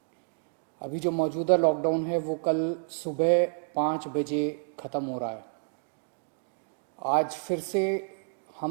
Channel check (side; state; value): left; silent; digital silence